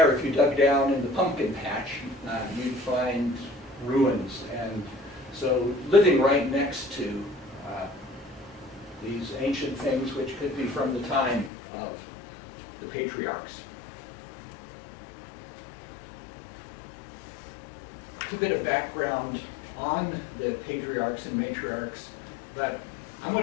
if you dug down in the pumpkin patch, you'd find ruins. And so living right next to these ancient things, which could be from the time of the patriarchs. It's a bit of background on the patriarchs and matriarchs, but I'm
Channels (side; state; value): right; drops out; at 11.5 s